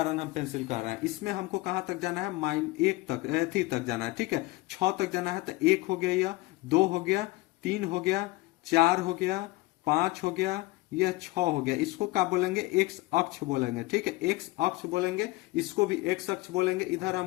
हम पेंसिल कर रहे हैं। इसमें हमको कहां तक जाना है, -1 तक, थी तक जाना है, ठीक है। 6 तक जाना है, तो 1 हो गया, यह 2 हो गया, 3 हो गया, 4 हो गया, 5 हो गया, यह 6 हो गया। इसको क्या बोलेंगे, x अक्ष बोलेंगे, ठीक है, x अक्ष बोलेंगे, इसको भी x अक्ष बोलेंगे। इधर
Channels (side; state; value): right; quieter; 20.5 dB